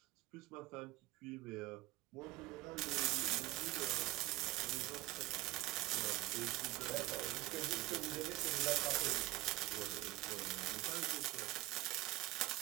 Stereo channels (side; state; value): left; quieter; 18.7 dB